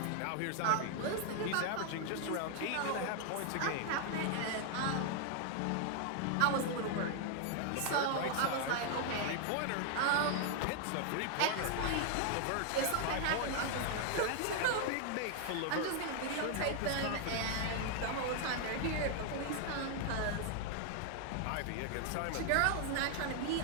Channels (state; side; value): different; both; correlation 0.00